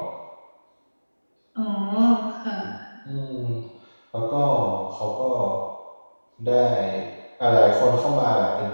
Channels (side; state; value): both; inverted; correlation -1.00